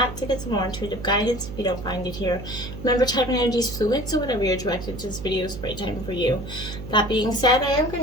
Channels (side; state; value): right; noise; hum, 11 dB below the sound